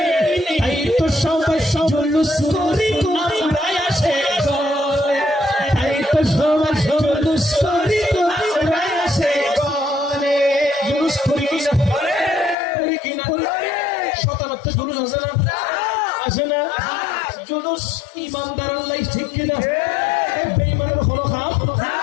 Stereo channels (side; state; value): right; drops out; at 12.6 s